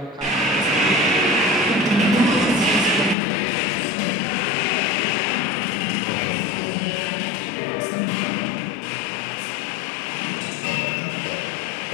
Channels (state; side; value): drops out; right; at 3.2 s